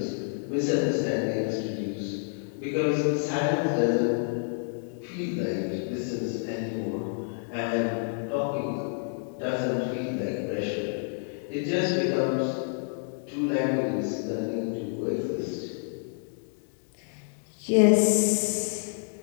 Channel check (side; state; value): right; silent; 59 dB below the other